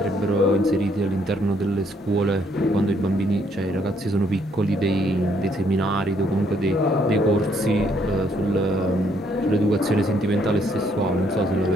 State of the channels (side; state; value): both; normal; correlation 0.69